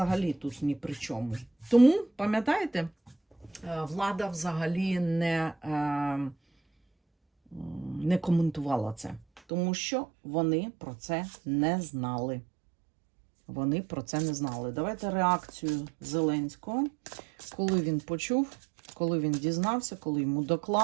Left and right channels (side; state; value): left; drops out; at 9.4 s